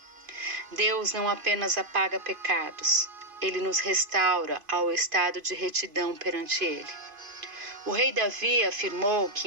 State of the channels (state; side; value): late; left; 2.5 ms